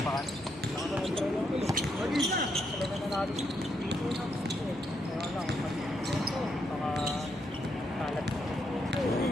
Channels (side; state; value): both; normal; correlation 0.78